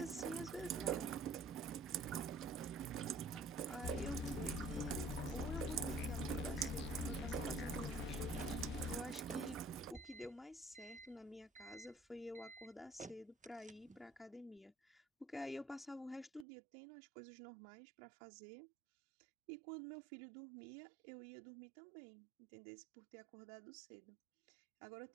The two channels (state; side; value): drops out; left; at 16.4 s